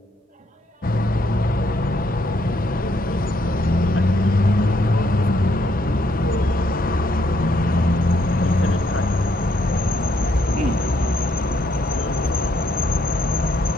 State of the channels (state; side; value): normal; both; correlation 0.72